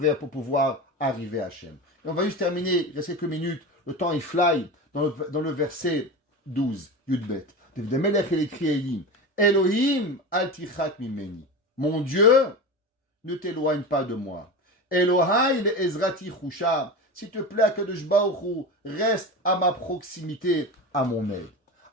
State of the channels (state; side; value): normal; both; correlation 0.26